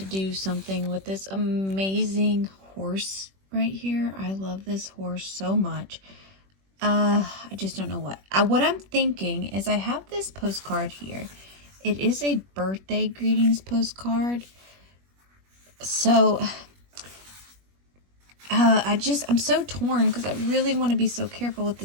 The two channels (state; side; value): late; left; 21 ms